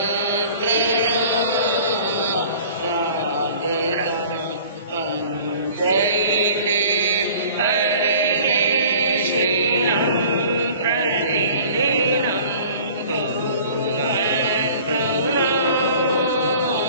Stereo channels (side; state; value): both; inverted; correlation -0.47